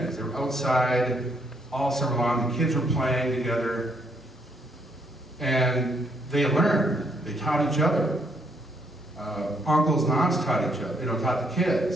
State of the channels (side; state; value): both; normal; correlation 0.72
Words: They were outside all summer long. The kids were playing together. And they learned. They taught each other. Uncles and aunts taught each other, taught the